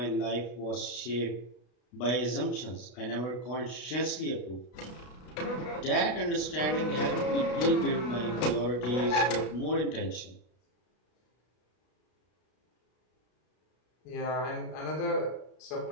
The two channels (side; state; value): right; late; 33 ms